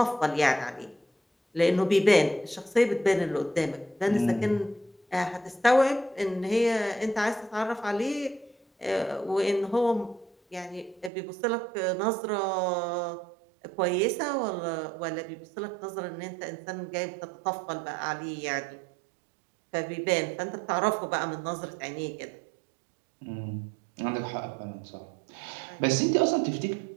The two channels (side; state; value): left; drops out; at 11.1 s